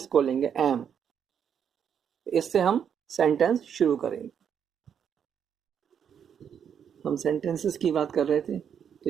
लेंगे एम। इससे हम सेंटेंस शुरू करेंगे। हम सेंटेंसेस की बात कर रहे थे, तो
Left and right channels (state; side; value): quieter; left; 8.1 dB